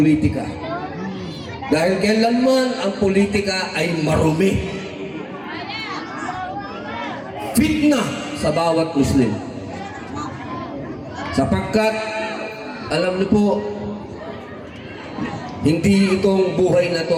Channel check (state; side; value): identical; both; correlation 1.00